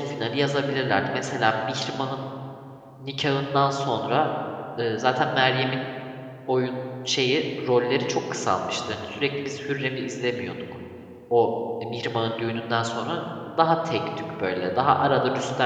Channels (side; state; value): both; identical; correlation 1.00